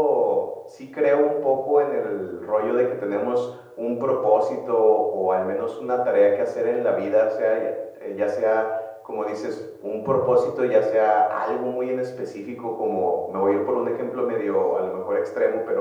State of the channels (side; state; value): both; identical; correlation 1.00